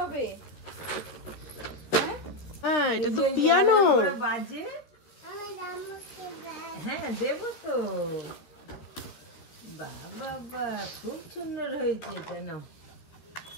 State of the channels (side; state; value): right; late; 13 ms